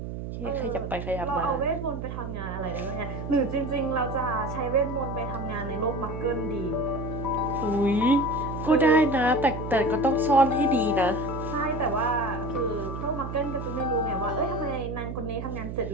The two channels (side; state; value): right; noise; hum, 6 dB below the sound